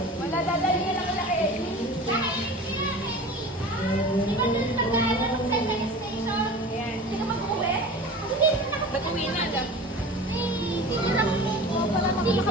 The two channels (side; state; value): both; normal; correlation 0.37